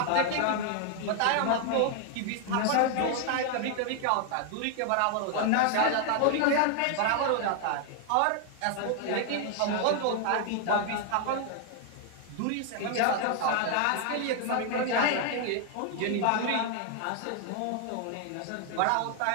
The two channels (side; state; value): both; different; correlation 0.00